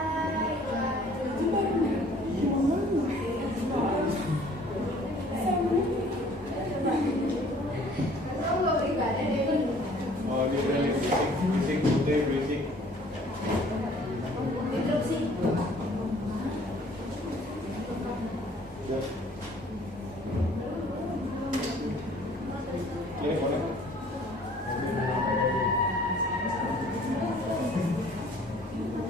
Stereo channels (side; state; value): both; normal; correlation 0.55